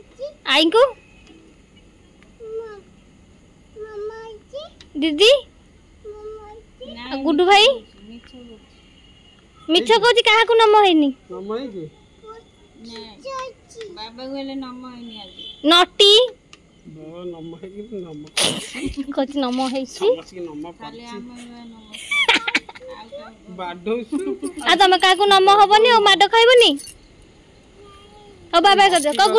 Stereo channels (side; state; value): both; identical; correlation 1.00